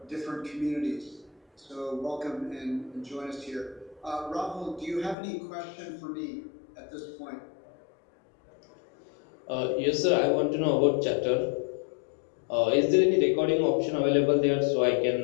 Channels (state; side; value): drops out; right; at 5.2 s